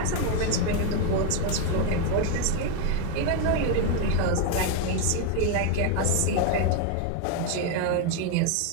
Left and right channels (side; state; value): both; different; correlation 0.01